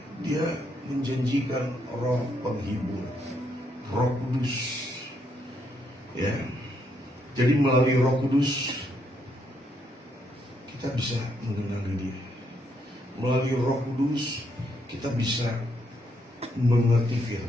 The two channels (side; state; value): both; normal; correlation 0.75